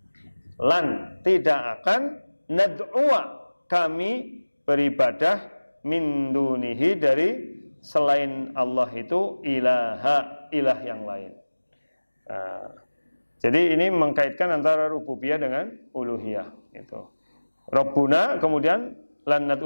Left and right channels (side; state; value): both; inverted; correlation -1.00